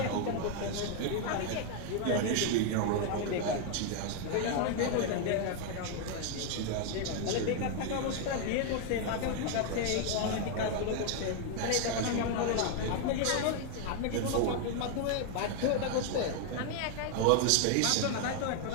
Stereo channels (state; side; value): different; both; correlation 0.01